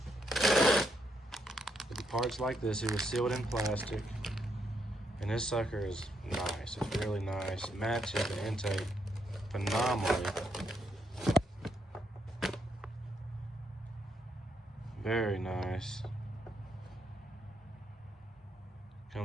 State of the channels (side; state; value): both; normal; correlation 0.76